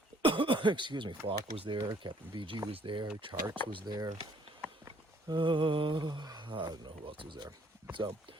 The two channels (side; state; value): both; normal; correlation 0.62